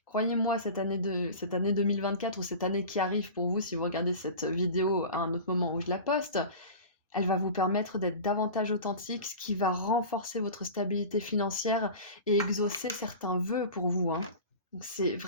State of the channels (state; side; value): inverted; both; correlation -0.34